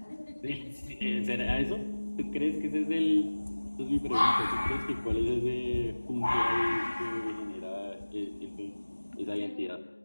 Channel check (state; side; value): inverted; both; correlation -1.00